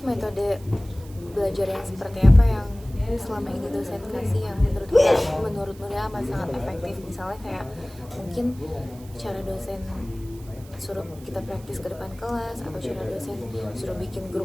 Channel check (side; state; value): right; noise; hiss, 23 dB below the sound